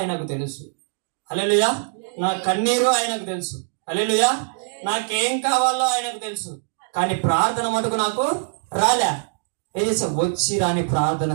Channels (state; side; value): silent; left; 64 dB below the other